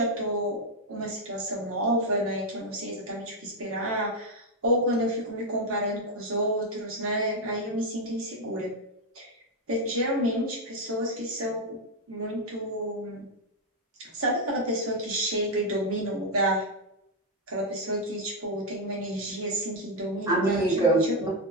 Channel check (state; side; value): normal; both; correlation 0.02